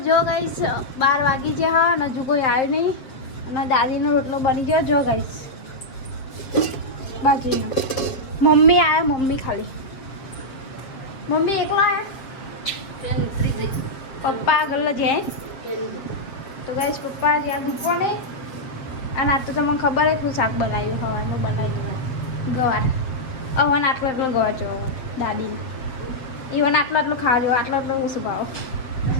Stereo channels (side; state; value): right; late; 7.8 ms